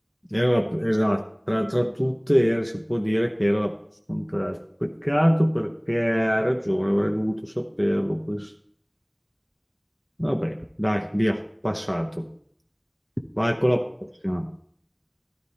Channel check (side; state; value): both; identical; correlation 1.00